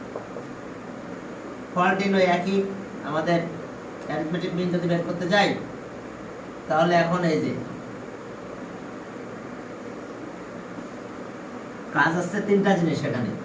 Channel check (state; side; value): identical; both; correlation 1.00